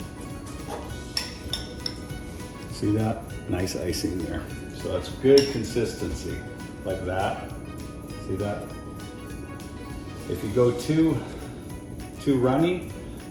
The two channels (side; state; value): both; identical; correlation 1.00